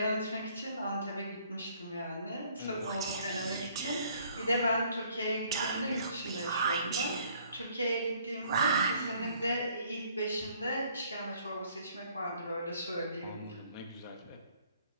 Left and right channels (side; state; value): both; inverted; correlation -0.61